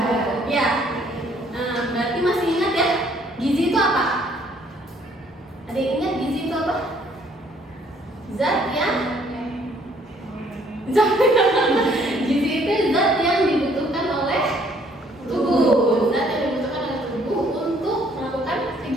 ya. Nah, berarti masih ingat ya, gizi itu apa? Ada yang ingat gizi itu apa? Zat yang gizi itu zat yang dibutuhkan oleh tubuh, zat yang dibutuhkan oleh tubuh untuk melakukan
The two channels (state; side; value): normal; both; correlation 0.63